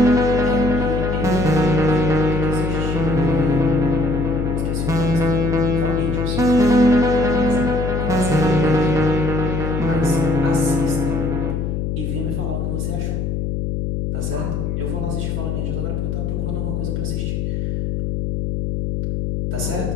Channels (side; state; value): left; noise; hum, 1 dB below the sound